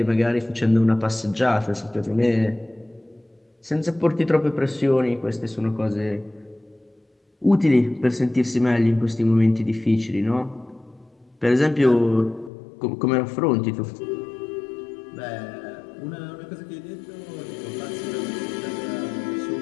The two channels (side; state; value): right; drops out; at 12.5 s